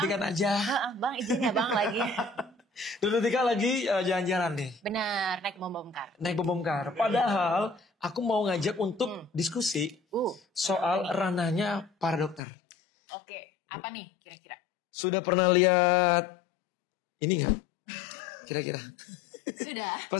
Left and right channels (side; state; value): right; drops out; at 12.4 s